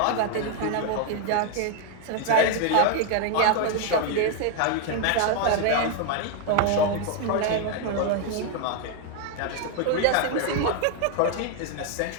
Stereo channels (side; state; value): both; different; correlation 0.01